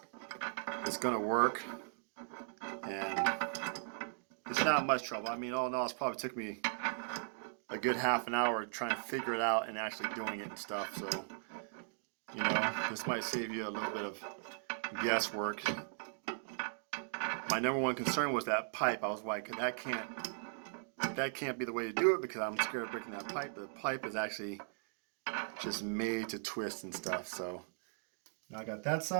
going to work, and it's not much trouble. I mean, all in all, it's probably took me a good half an hour trying to figure it out and actually doing it and stuff. So, you know, this might save you a little bit of guesswork. My number one concern was that pipe. I was like, that can't be the way to do it because I'm scared of breaking that pipe. The pipe is actually just made to twist and stuff. So now I got that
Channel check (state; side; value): silent; left; digital silence